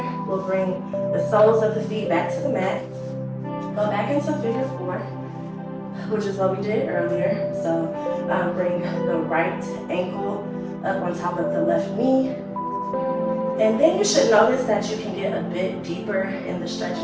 we'll bring the soles of the feet back to the mat. Go back into figure 4, which is what we did earlier. So bring the right ankle up on top of the left knee. And then you should notice that you can get a bit deeper in the stretch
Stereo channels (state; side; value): identical; both; correlation 1.00